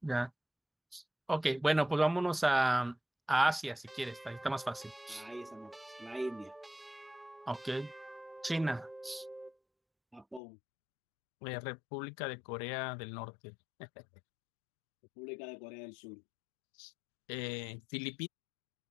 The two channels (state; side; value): drops out; right; at 10.4 s